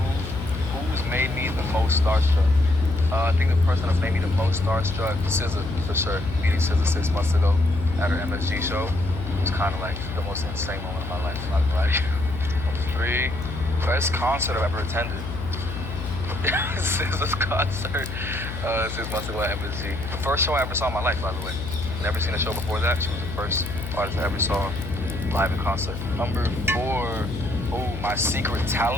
who's made me the most starstruck? I think the person that's made me the most starstruck, SZA, for sure. Meeting SZA 6 months ago at her MSG show was kind of like the most insane moment of my life, not gonna lie to you. Number 3, best concert I've ever attended. SZA's concert 6 months ago at MSG. The first show I ever saw in my life, by the way. Never seen a show before that. She was the first artist I ever saw live in concert. Number 4, my secret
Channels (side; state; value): left; noise; hum, 7 dB below the sound